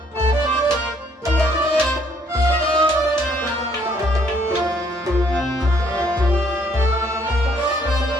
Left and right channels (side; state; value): both; normal; correlation 0.66